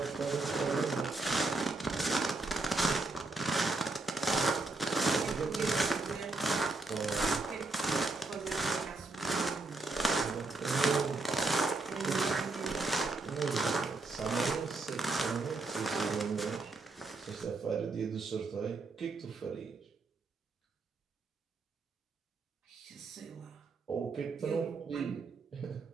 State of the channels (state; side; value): quieter; left; 3.4 dB